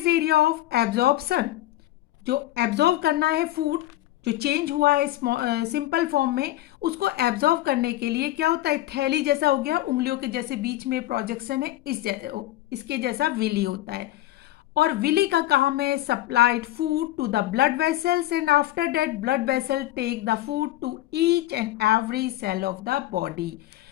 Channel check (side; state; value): right; quieter; 15.4 dB